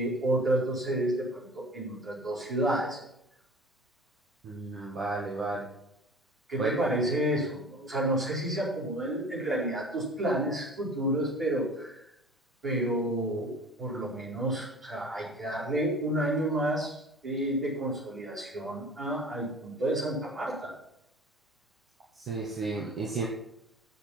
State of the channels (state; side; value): normal; both; correlation 0.42